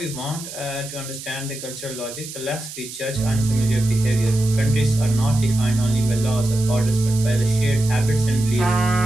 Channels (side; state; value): right; noise; hiss, 12 dB below the sound